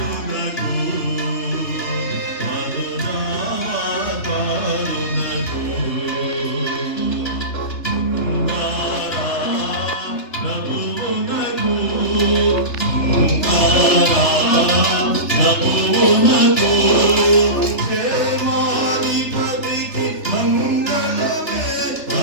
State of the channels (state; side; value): late; right; 3.3 ms